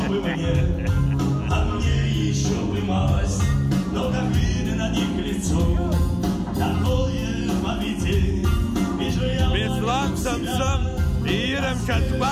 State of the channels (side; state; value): both; identical; correlation 1.00